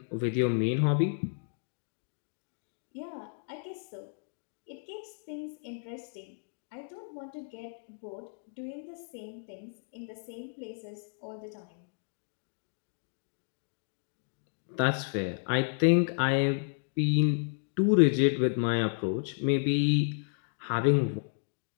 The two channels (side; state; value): right; silent; digital silence